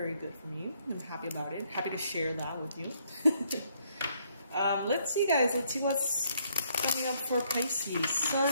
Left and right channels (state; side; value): inverted; both; correlation -0.70